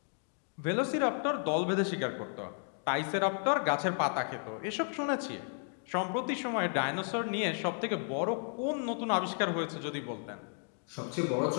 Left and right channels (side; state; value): right; silent; 55 dB below the other